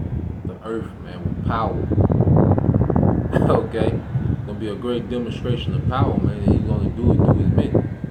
the earth, man, with power. Okay? Gonna be a great demonstration of power, man. And he's gonna do it through his men.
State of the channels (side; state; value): both; identical; correlation 1.00